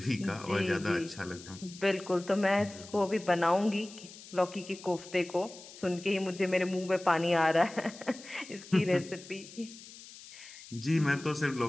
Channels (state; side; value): noise; left; hiss, 17 dB below the sound